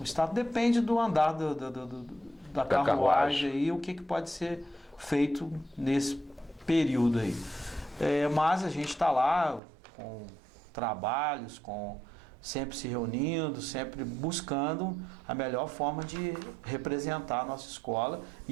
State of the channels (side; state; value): left; drops out; at 9.6 s